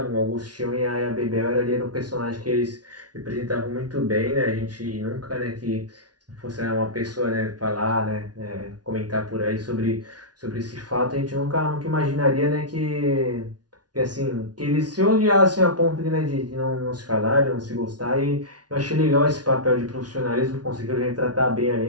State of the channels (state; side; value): late; left; 0.69 ms